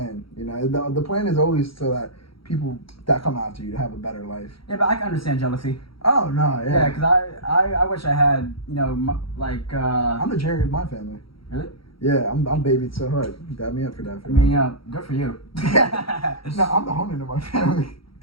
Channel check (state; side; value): late; right; 0.75 ms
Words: The plan is always so that people that come after you to have a better life. Yeah, but I can understand jealousy. Oh no, yeah. Yeah, because I wish I had I'm the Jerry of my family. Really? Yeah, I'm babied so hard. You got me up for that. Good for you. No, I'm the Honan of my family.